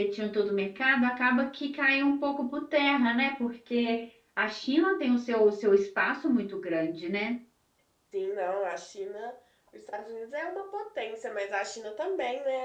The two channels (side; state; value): both; identical; correlation 1.00